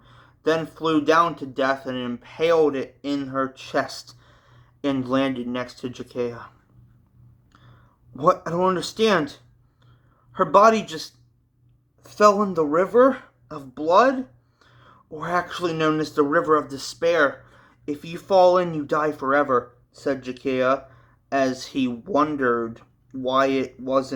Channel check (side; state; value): both; identical; correlation 1.00